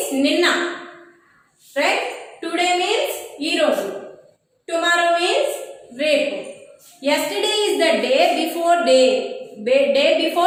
ninna, right? Today means ee roju. Tomorrow means repu. Yesterday is the day before day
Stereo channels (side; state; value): both; identical; correlation 1.00